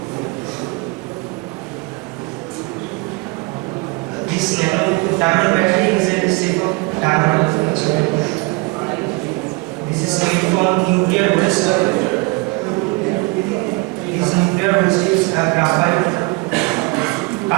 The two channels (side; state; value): left; quieter; 26.3 dB